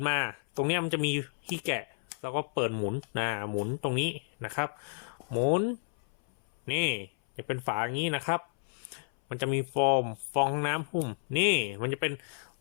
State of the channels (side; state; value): right; silent; 57 dB below the other